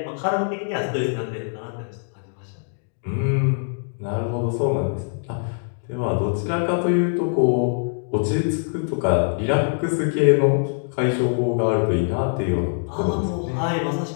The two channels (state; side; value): silent; right; digital silence